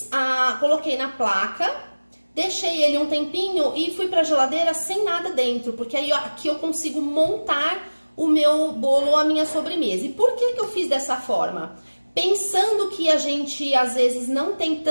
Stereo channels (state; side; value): inverted; both; correlation -1.00